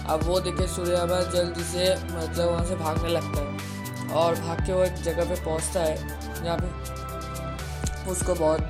अब वो देखे सूर्यामा जल्दी से मतलब वहाँ से भागने लगता है और भाग के वो एक जगह पे पहुँचता है जहाँ पे उसको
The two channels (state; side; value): identical; both; correlation 1.00